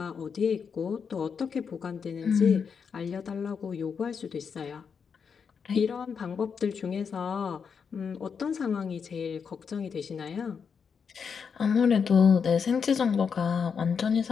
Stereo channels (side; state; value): right; quieter; 6.3 dB